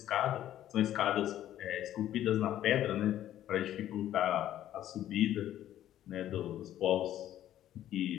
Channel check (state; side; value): quieter; right; 12.2 dB